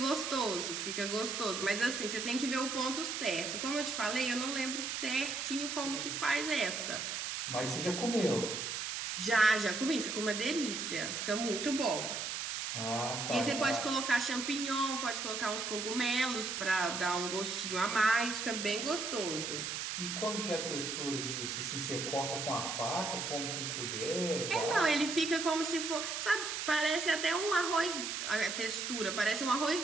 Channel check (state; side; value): noise; right; hiss, 3 dB below the sound